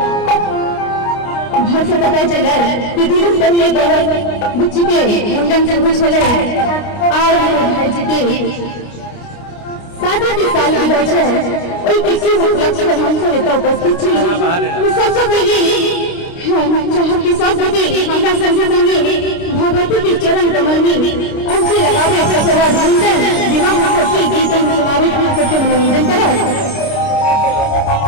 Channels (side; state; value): right; late; 29 ms